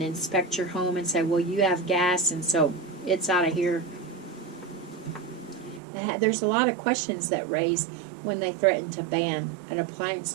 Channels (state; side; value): drops out; left; at 5.8 s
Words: inspect your home and say, well, you have gas and so it's out of here? There's a lot of questions that raise when they threaten to ban an appliance